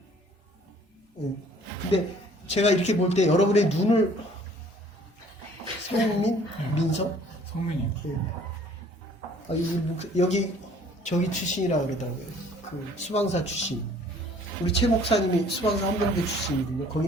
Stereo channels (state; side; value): normal; both; correlation 0.55